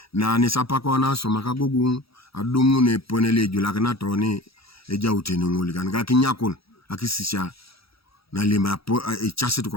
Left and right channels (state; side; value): late; right; 0.76 ms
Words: Na nisapako na soma Agogong adumu ne ponele julakina toni eja utenunguli kanika kinyakon akisisha na lima chase